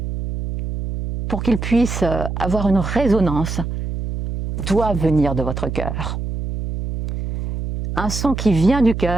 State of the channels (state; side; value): noise; right; hum, 5 dB below the sound